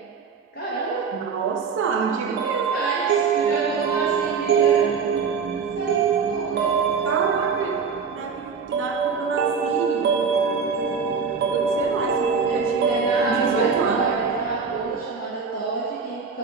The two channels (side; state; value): left; quieter; 5.6 dB